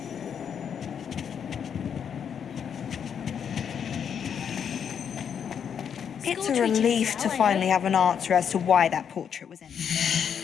It's a relief to finally have an answer as to why that portrait was in.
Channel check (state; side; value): quieter; right; 7.8 dB